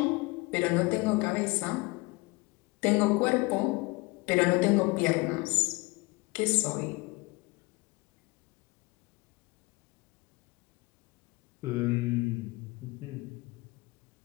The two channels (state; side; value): quieter; right; 25.2 dB